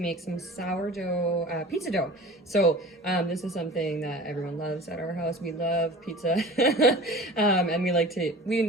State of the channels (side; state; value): both; normal; correlation 0.39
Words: some sourdough pizza dough. So this is something that everyone loves at our house. We love pizza. And we like to,